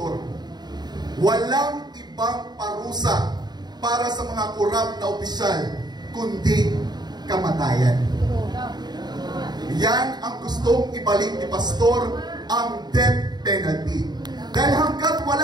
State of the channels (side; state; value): left; late; 0.20 ms